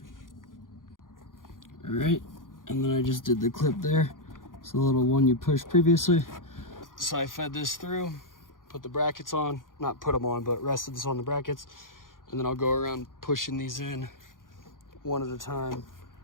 All right, and then I just did the clip there. It's the little one you pushed previously. So I fed this through, put the brackets on, not put them on, but rested this on the brackets. And then I'll go around pushing these in one at a time.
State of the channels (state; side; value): late; right; 0.90 ms